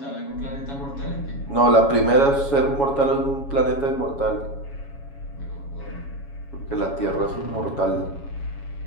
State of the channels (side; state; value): right; late; 7.2 ms